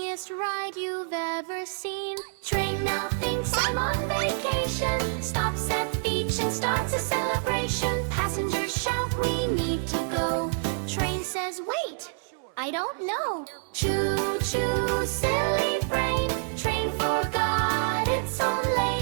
ride you've ever seen. Train now thinks I'm on vacation, stops at beach and starts a celebration. Passengers shout we need to go. Train says wait, I don't know. Choo choo, silly brain. Train forgot its own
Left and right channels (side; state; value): left; silent; digital silence